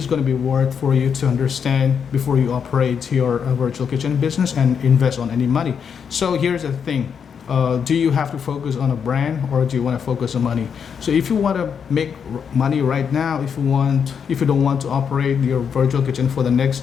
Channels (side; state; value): right; quieter; 7.0 dB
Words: going to be worth for you to understand before you operate your virtual kitchen business and invest on any money. So here's the thing. Do you have to focus on a brand, or do you want to focus on money? So if you want to make money right now, if you don't want to operate your virtual kitchen for the next